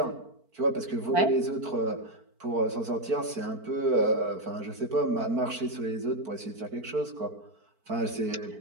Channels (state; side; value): late; left; 4.5 ms